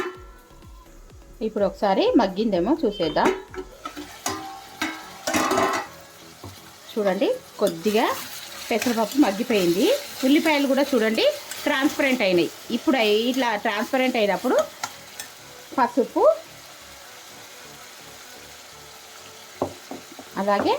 ఇప్పుడు ఒకసారి మగ్గిందేమో చూసేద్దాం. చూడండి, కొద్దిగా పెసరపప్పు మగ్గిపోయింది. ఉల్లిపాయలు కూడా చూడండి ట్రాన్స్పరెంట్ అయినాయి. ఇప్పుడు ఇట్లా ట్రాన్స్పరెంట్ అయినప్పుడు పసుపు, అలాగే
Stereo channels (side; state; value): both; identical; correlation 1.00